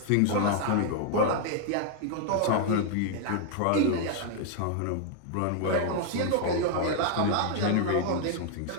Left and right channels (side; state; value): both; different; correlation 0.00